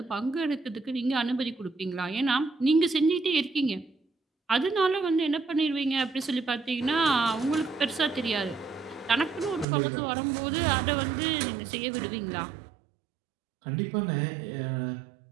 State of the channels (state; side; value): drops out; left; at 9.7 s